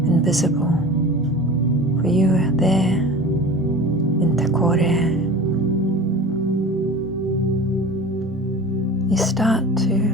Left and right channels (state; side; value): normal; both; correlation 0.36